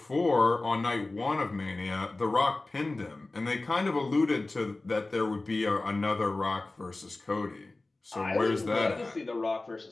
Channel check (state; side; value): quieter; right; 3.1 dB